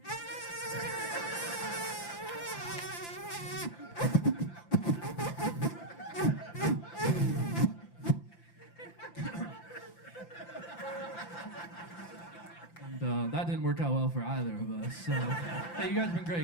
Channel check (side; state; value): right; late; 5.8 ms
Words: And that didn't work out well for either of us. So, hey, you guys have been